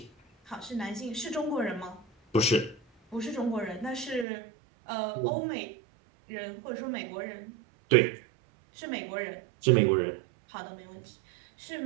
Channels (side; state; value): left; drops out; at 4.2 s